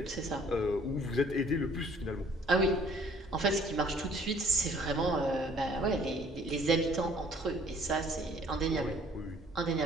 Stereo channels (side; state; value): both; normal; correlation 0.57